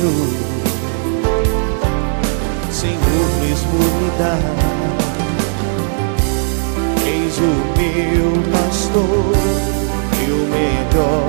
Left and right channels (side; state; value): left; silent; digital silence